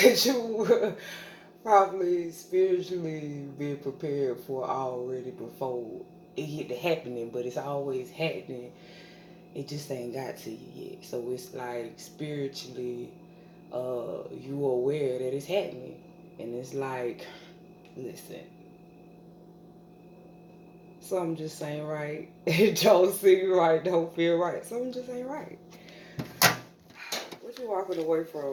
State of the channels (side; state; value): both; identical; correlation 1.00